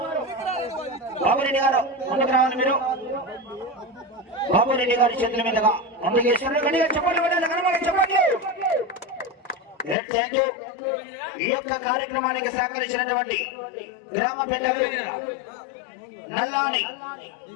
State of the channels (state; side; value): drops out; right; at 10.0 s